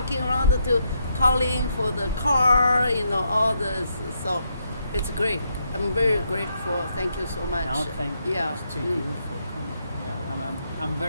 around to calling for the car, all this. So it's great. I'm very grateful. Thank you so much. No, thank you to you for coming. Yeah, I'm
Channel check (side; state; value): both; inverted; correlation -0.79